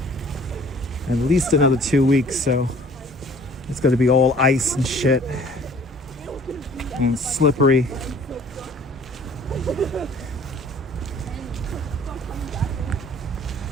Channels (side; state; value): both; normal; correlation 0.52